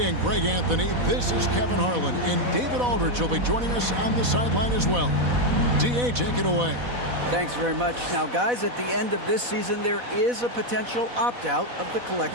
and Greg Anthony, this is Kevin Harlan, and David Aldridge will be joining us on the sideline as well. DA, take it away. Thanks very much. Now, guys, at the end of this season, there is a potential opt-out of the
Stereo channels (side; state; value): left; late; 4.1 ms